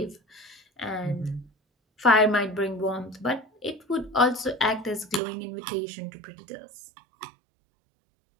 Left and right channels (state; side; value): drops out; left; at 5.2 s